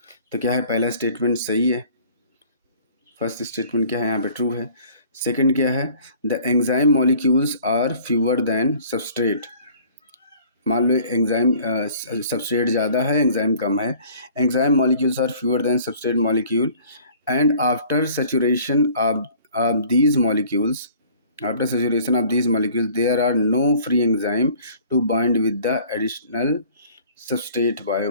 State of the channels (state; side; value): inverted; both; correlation -0.52